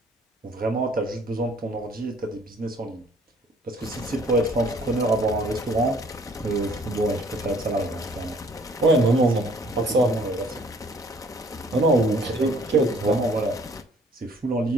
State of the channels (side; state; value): both; normal; correlation 0.58